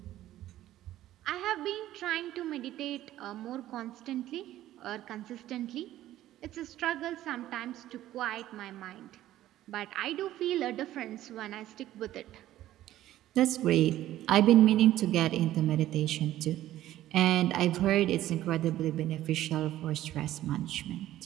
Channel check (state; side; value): quieter; left; 13.8 dB